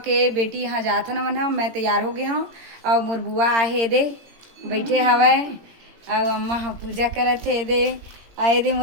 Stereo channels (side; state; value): left; late; 18 ms